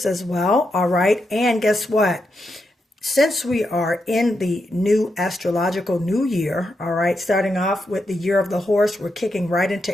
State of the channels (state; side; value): normal; both; correlation 0.84